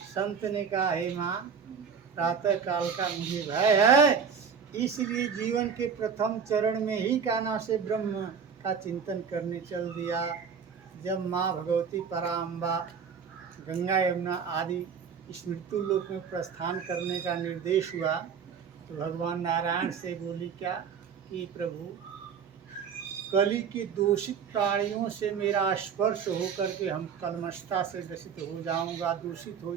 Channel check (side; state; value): left; quieter; 6.6 dB